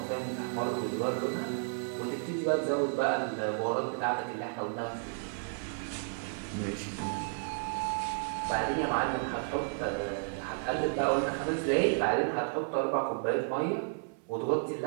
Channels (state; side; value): silent; left; 56 dB below the other